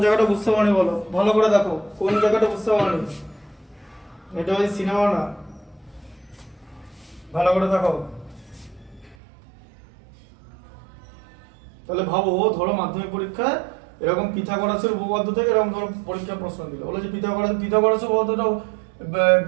জায়গাটা বুঝতে পারনি, বলো ভালো করে দেখো কোন জায়গাটা বুঝতে পারনি, এটা ওই সিনেমা না, ভালো করে দেখো। তাহলে ভাবো, ধরো মাধ্যমিক পরীক্ষায় এরকম পিথাগোরাসের উপপাদ্য থেকে এরকম ধরো পরীক্ষার প্রশ্ন দিল, বলে যে পিথাগোরাসের উপপাদ্যটাও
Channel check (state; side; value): drops out; left; at 9.2 s